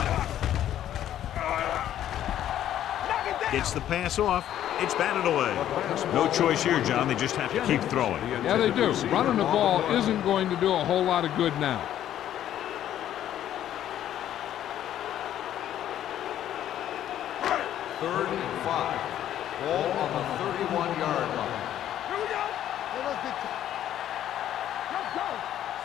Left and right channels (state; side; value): quieter; right; 11.5 dB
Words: Gets the pass off. It's batted away. No choice here, John. They just have to keep throwing. Yeah, they do. Running the ball isn't going to do a whole lot of good now. Third and 5. Ball on the 31-yard line. Here we go. Let's go.